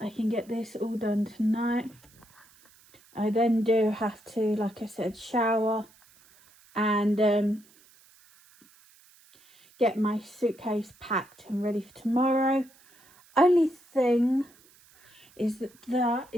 can get this all done tonight. I then do have to, like I said, shower and get my suitcase packed and ready for tomorrow. Only thing is that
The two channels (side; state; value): right; noise; hiss, 28 dB below the sound